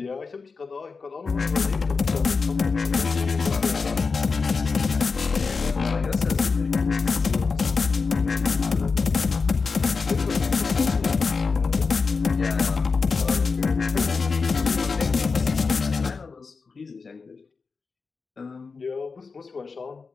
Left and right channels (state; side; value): quieter; right; 4.7 dB